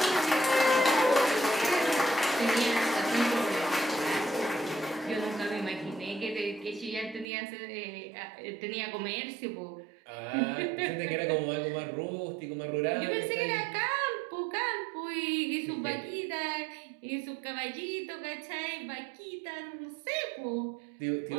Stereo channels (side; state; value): left; drops out; at 7.2 s